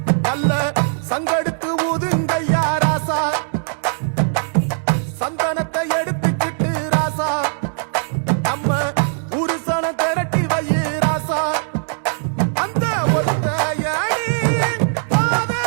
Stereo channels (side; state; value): left; silent; 66 dB below the other